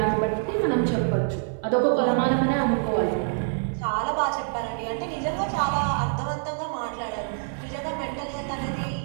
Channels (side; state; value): left; silent; 56 dB below the other